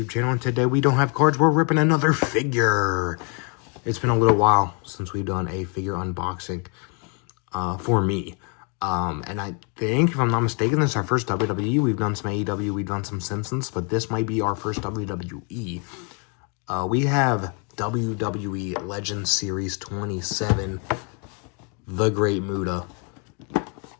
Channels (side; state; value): right; quieter; 37.0 dB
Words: channel, and today we don't have cards, we're ripping another figure. It's been a little while since we've done a figure unboxing for me. And I think, if I'm not mistaken, this is our first WWE. We've done some AEW, we've done some Simpsons, but this might be our first WWE. We have WWE Legends Series 27, the Great Muta,